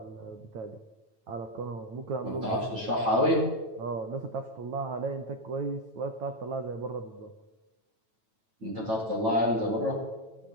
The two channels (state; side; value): late; left; 9.1 ms